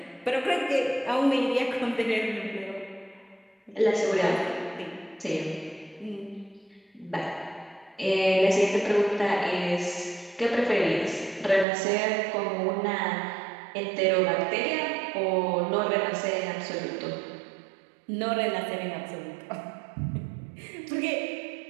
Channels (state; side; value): drops out; left; at 11.7 s